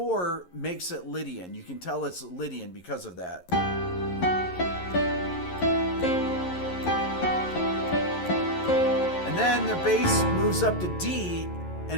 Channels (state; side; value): late; right; 11 ms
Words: makes it Lydian. You can tell it's Lydian because of that. And then the bass moves up to D,